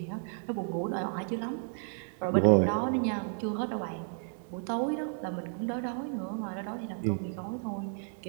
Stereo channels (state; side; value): silent; left; 56 dB below the other